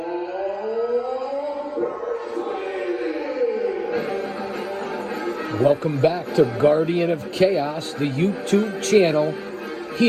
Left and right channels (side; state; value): both; identical; correlation 1.00